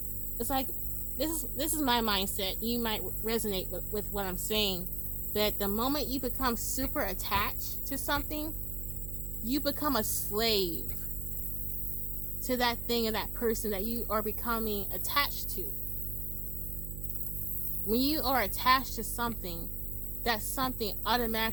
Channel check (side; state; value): right; noise; hum, 6 dB below the sound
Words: it's like, this is my mindset. You might resonate with what I'm saying. That the moment you become super attached to something, you become a slave to that thing and that person that you are becoming attached to. When you are attached to something, that something